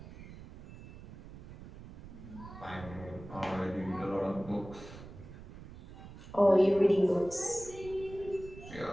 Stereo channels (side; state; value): right; noise; rumble, 15 dB below the sound